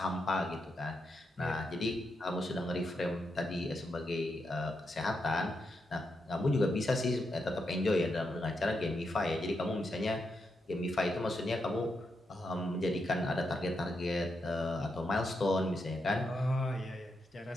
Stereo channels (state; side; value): normal; both; correlation 0.84